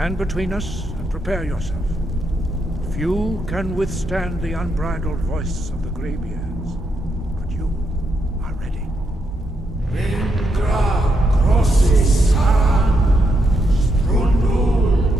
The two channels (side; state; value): both; normal; correlation 0.80